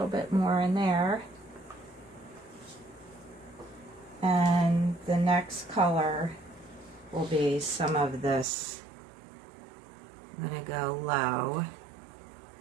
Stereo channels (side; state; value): left; drops out; at 8.5 s